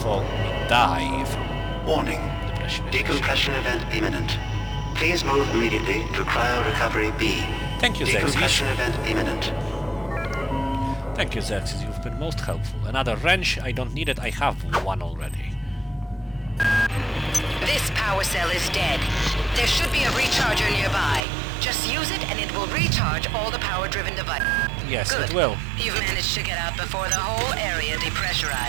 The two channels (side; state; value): left; drops out; at 21.2 s